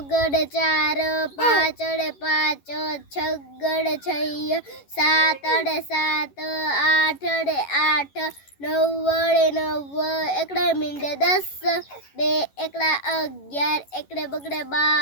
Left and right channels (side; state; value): right; late; 11 ms